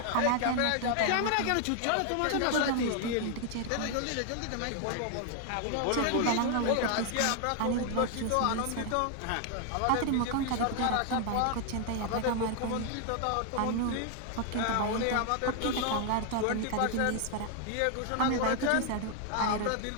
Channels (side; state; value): both; different; correlation 0.00